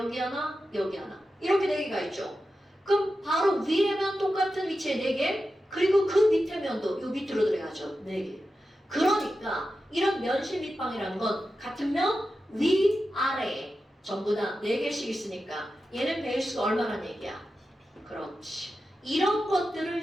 하나, 여기 하나. 이렇게 4개가 있죠. 그럼 바로 위에 면 똑같은 위치에 4개, 그리고 그 밑에 면도 요 밑으로 들어가죠. 4개. 그러니까 이런 면실 밑방이라는 건 같은 면 위, 아래에 전부 다 4개씩 있으니까 얘는 베이스가 얼마나 얘기야? 그렇지. 이런 것들을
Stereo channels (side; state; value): both; normal; correlation 0.91